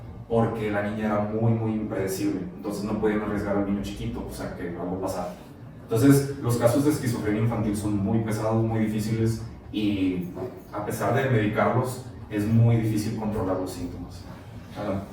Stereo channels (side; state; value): both; identical; correlation 1.00